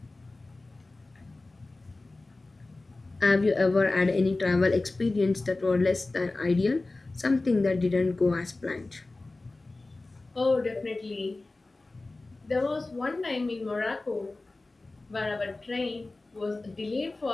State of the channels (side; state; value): right; quieter; 3.2 dB